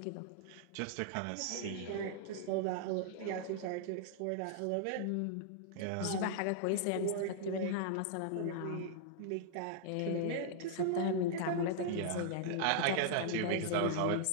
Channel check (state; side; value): different; both; correlation -0.01